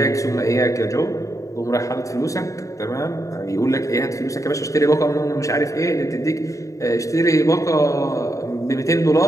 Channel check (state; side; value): late; right; 0.16 ms